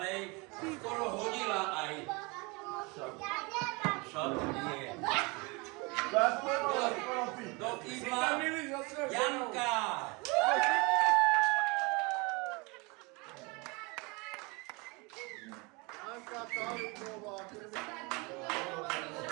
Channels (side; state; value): left; quieter; 27.8 dB